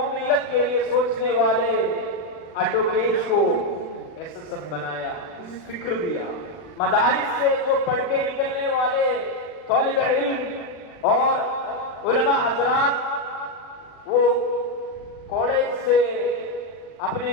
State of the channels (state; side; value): late; right; 40 ms